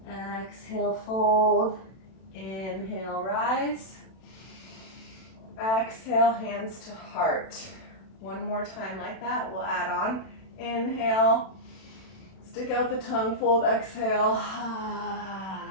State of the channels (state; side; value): late; right; 32 ms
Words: Exhale, fold. Inhale, rise. Exhale, hands to heart. One more time like that, we'll add on. Inhale, stick out the tongue, fold, exhale.